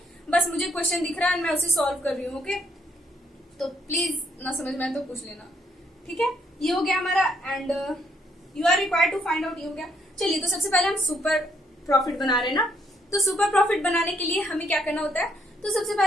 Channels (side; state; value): both; normal; correlation 0.71